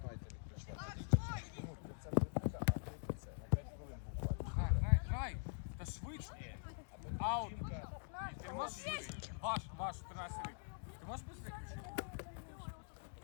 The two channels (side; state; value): right; silent; digital silence